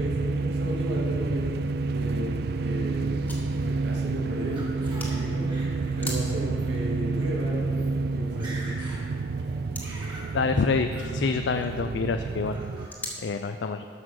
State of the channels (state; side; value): normal; both; correlation 0.61